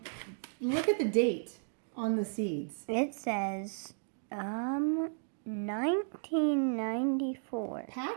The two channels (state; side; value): silent; left; digital silence